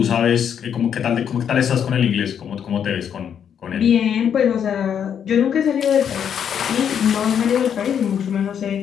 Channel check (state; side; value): quieter; right; 8.3 dB